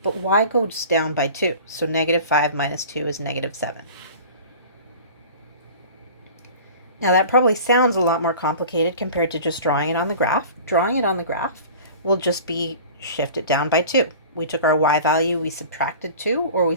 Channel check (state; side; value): inverted; both; correlation -0.40